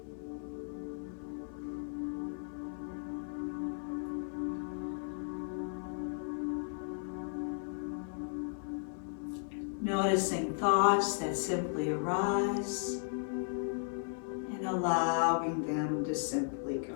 Noticing thoughts that simply arise and allowing them to simply go.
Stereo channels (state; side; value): silent; right; 54 dB below the other